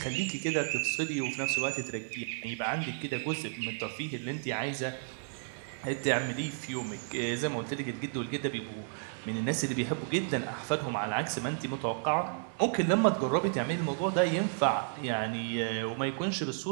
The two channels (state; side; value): silent; left; 56 dB below the other